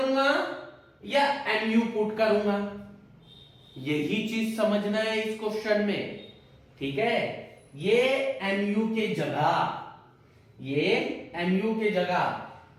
या MU पुट करूंगा? यही चीज समझना है इस क्वेश्चन में, ठीक है। ये MU के जगह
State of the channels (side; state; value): both; identical; correlation 1.00